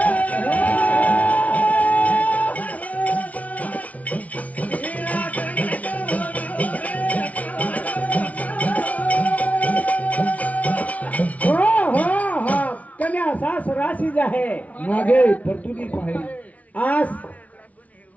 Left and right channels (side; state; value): right; late; 0.069 ms